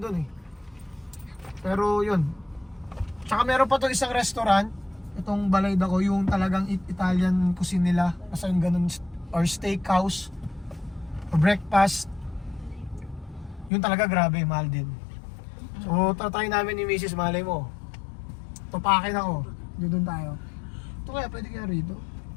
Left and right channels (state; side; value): drops out; right; at 13.7 s